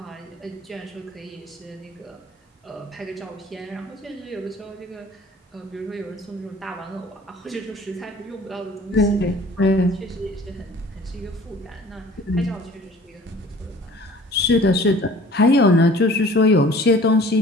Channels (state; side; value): normal; both; correlation 0.49